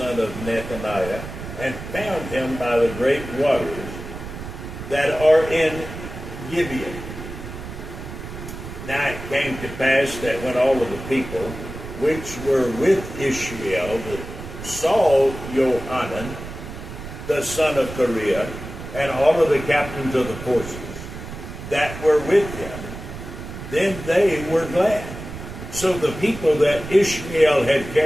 of Nethaniah, and found him by the great waters that are in Gibeon. Now it came to pass that when all of the people which were with Ishmael saw Johanan, the son of Kareah, and all of the captains of the forces that were with him, then they were glad. So the people that Ishmael had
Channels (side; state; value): right; noise; rumble, 11 dB below the sound